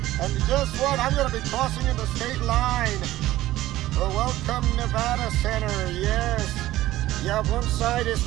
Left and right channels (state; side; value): quieter; left; 15.6 dB